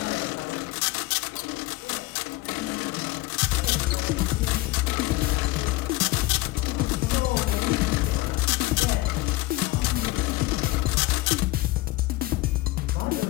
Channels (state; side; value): quieter; right; 19.4 dB